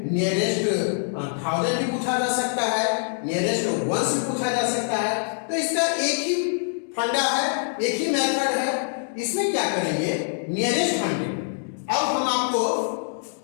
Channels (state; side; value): silent; right; digital silence